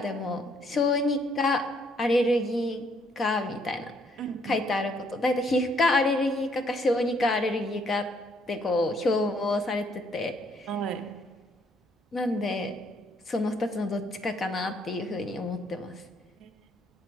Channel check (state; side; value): normal; both; correlation 0.68